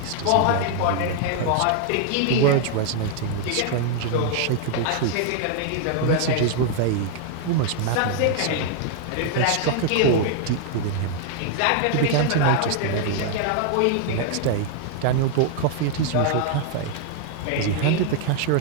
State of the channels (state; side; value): different; both; correlation 0.00